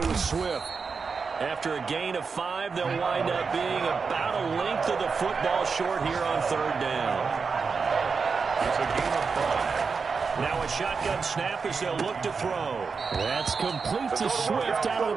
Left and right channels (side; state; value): left; quieter; 5.1 dB